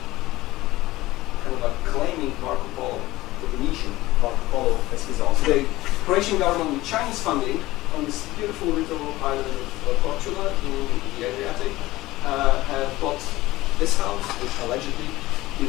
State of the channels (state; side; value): quieter; right; 18.0 dB